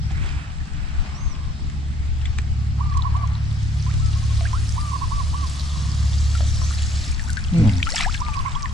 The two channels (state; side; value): normal; both; correlation 0.61